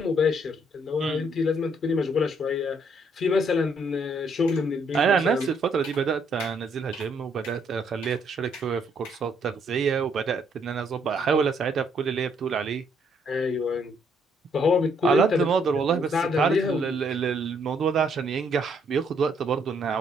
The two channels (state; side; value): normal; both; correlation 0.69